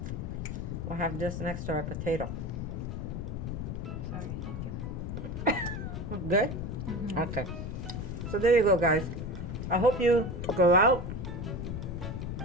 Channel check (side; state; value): left; noise; rumble, 4 dB below the sound